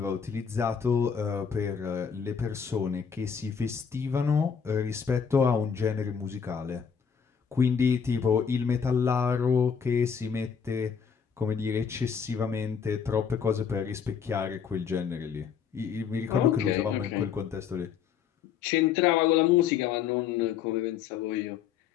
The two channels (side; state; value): right; quieter; 7.1 dB